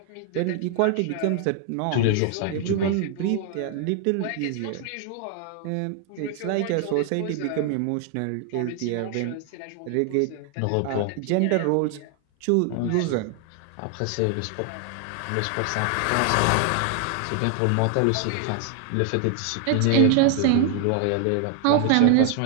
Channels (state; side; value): different; both; correlation 0.00